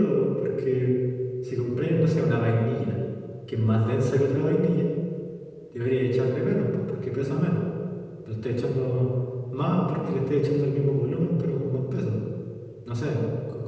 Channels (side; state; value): both; identical; correlation 1.00